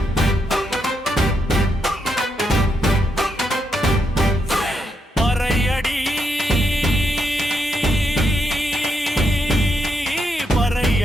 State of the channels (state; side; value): normal; both; correlation 0.81